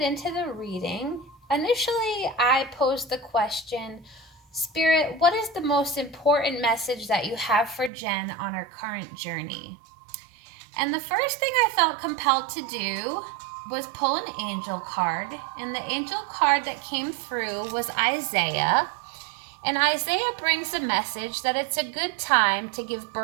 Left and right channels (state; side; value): drops out; left; at 7.9 s